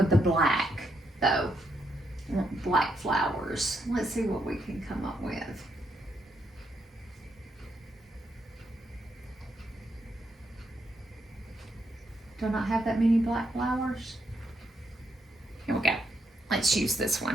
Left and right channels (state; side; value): normal; both; correlation 0.78